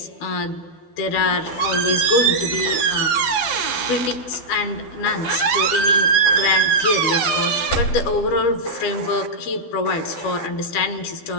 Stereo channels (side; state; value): right; late; 12 ms